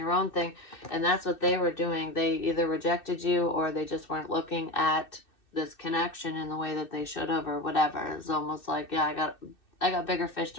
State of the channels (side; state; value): right; late; 2.6 ms